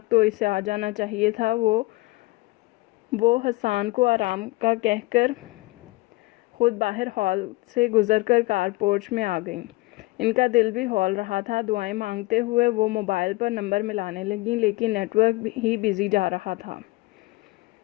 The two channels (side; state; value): right; quieter; 22.0 dB